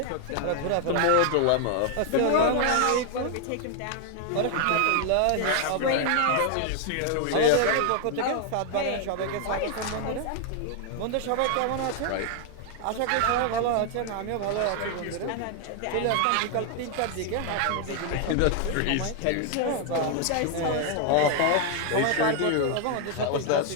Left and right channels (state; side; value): different; both; correlation 0.00